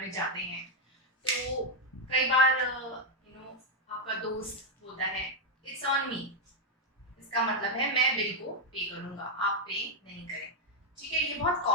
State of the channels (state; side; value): normal; both; correlation 0.01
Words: में जाते हैं तो कई बार आपका दोस्त बोलता है इट्स ऑन मी। इसका मतलब है मैं बिल को पे करूंगा, आप पे नहीं करें। ठीक है, ये बहुत